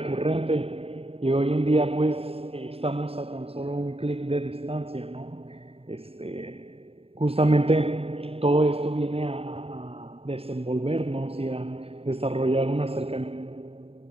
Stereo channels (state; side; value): late; left; 0.28 ms